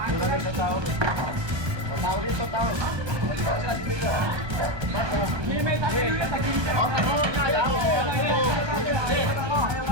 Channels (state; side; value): late; left; 1.3 ms